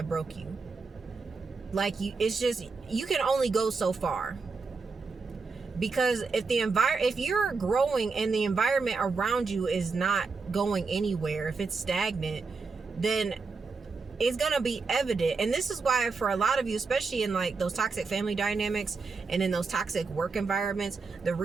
broke you. Like, you can only go so far. Because if you're growing and the environment around you is not going anywhere, if it's stagnant, then it's going to be evident. And this is why, for a lot of you, especially in like those toxic family dynamics and in those toxic work environments, the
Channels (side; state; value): left; quieter; 4.5 dB